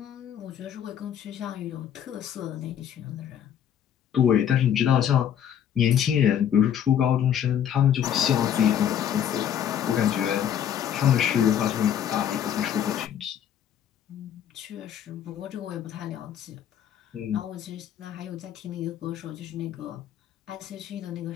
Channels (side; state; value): right; quieter; 9.6 dB